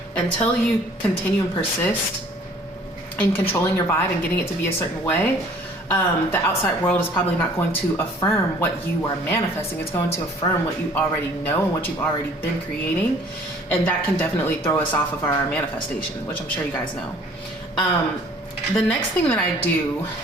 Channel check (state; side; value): normal; both; correlation 0.54